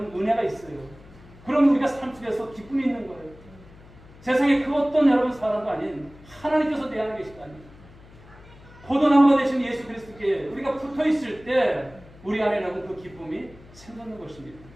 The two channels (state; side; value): noise; left; hum, 22 dB below the sound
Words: 은혜가 있어요. 그럼 우리가 삶 속에서 기쁨이 있는 거예요. 세상에 그 어떤 여러분 사람도 아닌 하나님께서 내 안에 계시다니. 포도나무가 되신 예수 그리스도께 우리가 붙어 있을 때 우리 안에 여러분 그 기쁨이 생기는 것입니다.